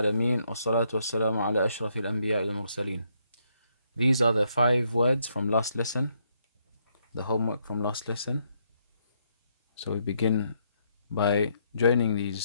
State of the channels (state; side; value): inverted; both; correlation -0.74